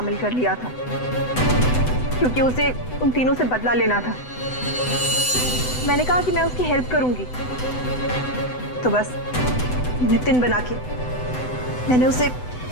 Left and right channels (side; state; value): right; late; 7.9 ms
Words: कर लिया था क्योंकि उसे उन तीनों से बदला लेना था। मैंने कहा कि मैं उसकी हेल्प करूंगी, तो बस नितिन बना के मैंने उसे